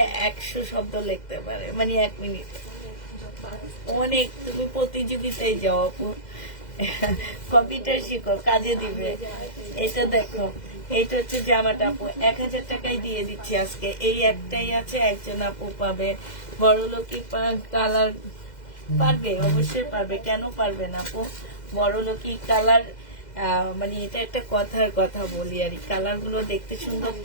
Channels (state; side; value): late; right; 2.0 ms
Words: 100 শব্দ লিখতে পারে, মানে 1 মিনিট, অনেক। তুমি প্রতিযোগিতায় যাও আপু, কম্পিউটার শিখো, কাজে দিবে। এটা দেখো, এটা হচ্ছে জামাটা আপু, 1000 টাকায় দিয়ে দিচ্ছি আজকে। এই একটাই আছে, একজন আপু পাবে, বড় লোকই কালার পারবে, অবশ্যই পারবে, কেন পারবে না আপু। বড় লোকই কালার, মানে এটা একটা কথার কথা বলি আর, কালার গুলো দেখতে সুন্দর